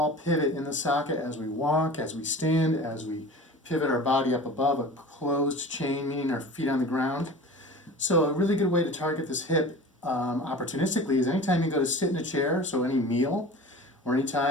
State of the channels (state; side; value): normal; both; correlation 0.38